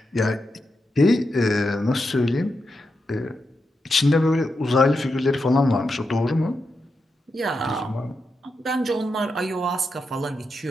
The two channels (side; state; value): both; normal; correlation 0.86